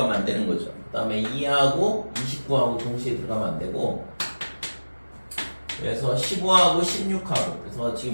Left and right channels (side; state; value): both; inverted; correlation -1.00